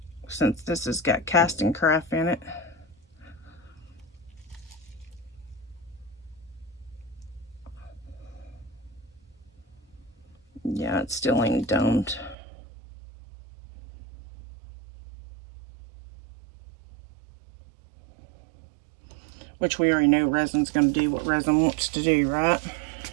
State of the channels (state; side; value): drops out; left; at 12.4 s